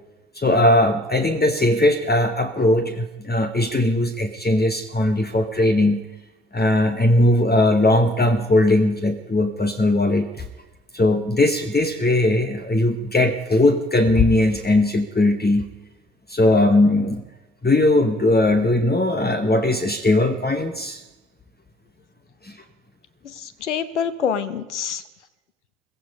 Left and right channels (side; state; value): both; normal; correlation 0.62